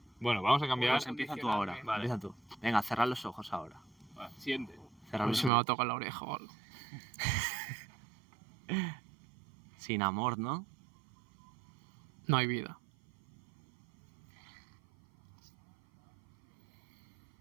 Bueno, vamos a cambiar. pues empieza tú ahora. Vale. Empieza tú. Venga, cerrar los ojos ahora. Va, siente. Cerrar A ver los si me va a ojos. tocar la oreja o algo. Sin amor, ¿no? No hay vida.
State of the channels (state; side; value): drops out; left; at 5.5 s